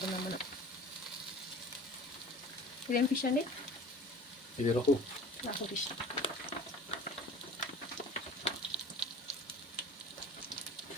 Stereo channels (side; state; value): both; normal; correlation 0.41